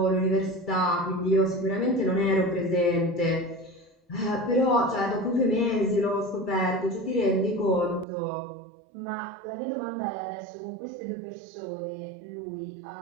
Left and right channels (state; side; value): drops out; left; at 8.1 s